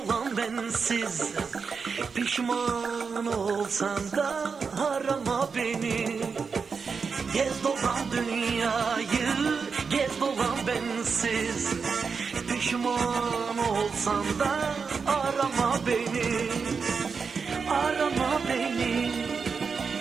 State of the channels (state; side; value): quieter; left; 5.4 dB